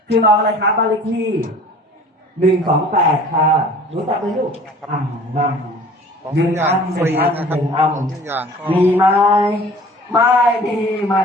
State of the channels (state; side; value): normal; both; correlation 0.47